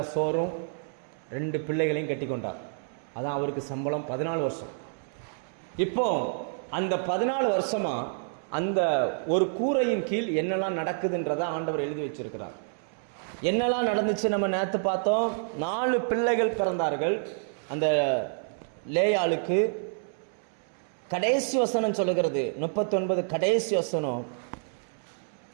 சோறும் 2 பிள்ளைகளையும் கட்டி கொண்டார். அதான் அவருக்கு சம்பளம் 14 வருஷம். இப்போ அந்த 14 வருஷமா அந்த ஒரு கூரையின் கீழ் என்னெல்லாம் நடக்குதுன்றதை ஆண்டவர் எழுதி வச்சிருக்கிறார். என்னெல்லாம் நடந்துச்சு நம்ம நேற்று பார்த்தோம். 4 பிள்ளைகள் பிறந்தார்கள். அந்த லேயாளுக்கு கடைசி வசனம் சொல்லுகிறது, 39 கடைசி வசனம்,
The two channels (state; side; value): silent; left; 59 dB below the other